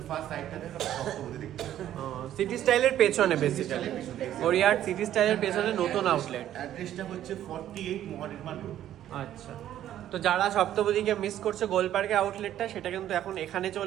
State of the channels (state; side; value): quieter; left; 11.8 dB